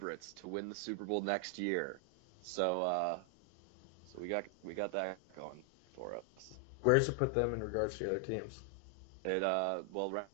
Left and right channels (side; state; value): both; normal; correlation 0.00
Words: to win the Super Bowl next year. So we got that going for us. Where does it put them in regards to the other teams? Well,